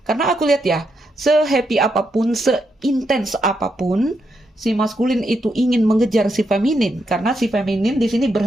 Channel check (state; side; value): normal; both; correlation 0.81